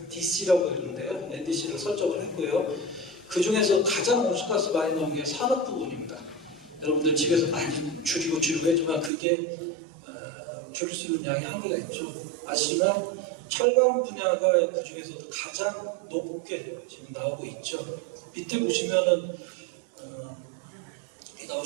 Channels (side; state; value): left; drops out; at 9.1 s